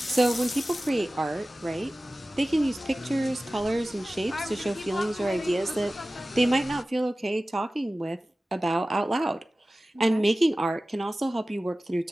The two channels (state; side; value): normal; both; correlation 0.96